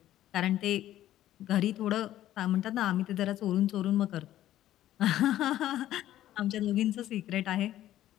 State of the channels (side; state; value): right; quieter; 13.1 dB